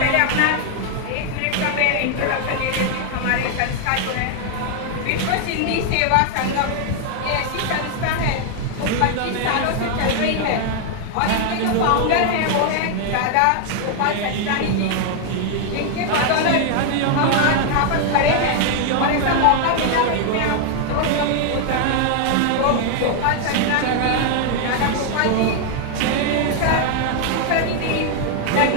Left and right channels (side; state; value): both; different; correlation 0.00